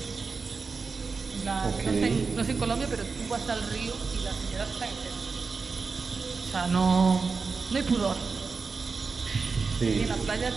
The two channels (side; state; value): left; quieter; 4.7 dB